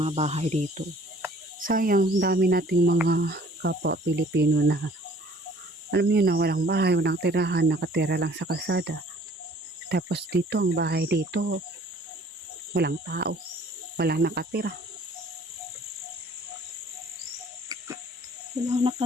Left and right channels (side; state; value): both; normal; correlation 0.54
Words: bahay dito. Sayang, dami nating mga kapwa Pilipino na alam niyo na walang bahay, walang tirahan, nakatira lang sa kalsada. Tapos dito, ang bahay dito, walang tao, walang nakatira. Walang